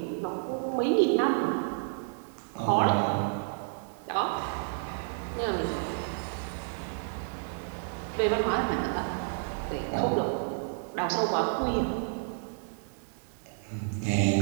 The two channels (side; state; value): left; silent; digital silence